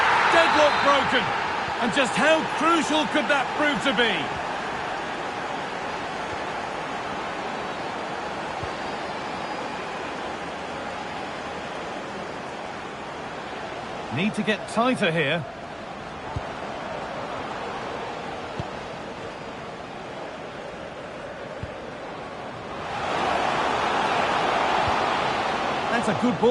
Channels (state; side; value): identical; both; correlation 1.00